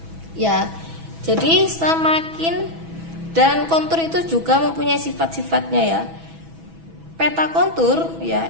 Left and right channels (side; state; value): left; late; 6.1 ms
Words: Ya, jadi semakin, dan kontur itu juga mempunyai sifat-sifatnya ya. Peta kontur